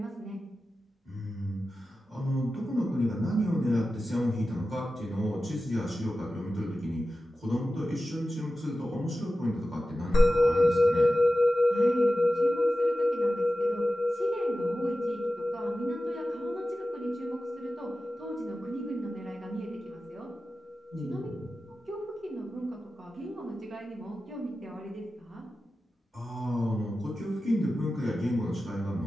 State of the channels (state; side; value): normal; both; correlation 0.94